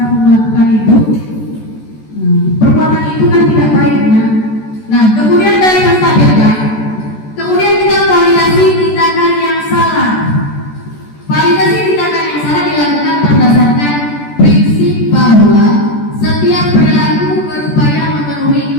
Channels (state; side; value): late; right; 14 ms